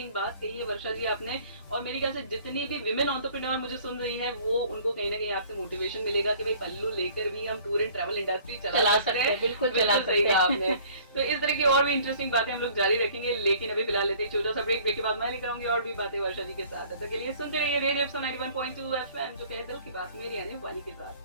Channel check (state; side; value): inverted; both; correlation -0.53